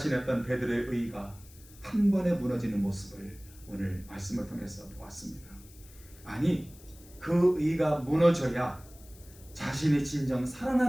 베드로의 의가 한 번에 무너지는 모습을 오늘 말씀을 통해서 보았습니다. 아니, 그 의가 무너져야 자신이 진정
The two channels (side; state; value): left; noise; hiss, 23 dB below the sound